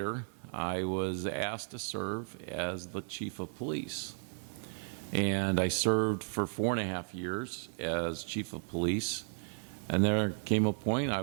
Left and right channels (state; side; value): silent; left; 55 dB below the other